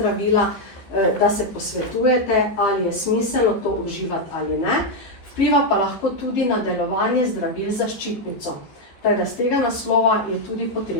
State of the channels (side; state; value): right; late; 15 ms